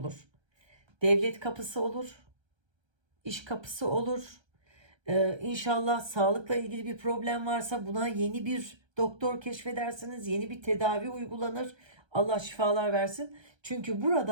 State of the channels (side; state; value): left; late; 1.3 ms